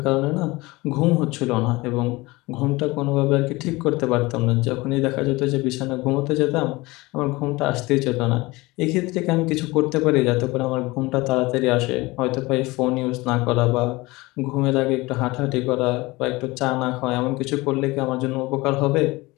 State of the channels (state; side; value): quieter; right; 21.9 dB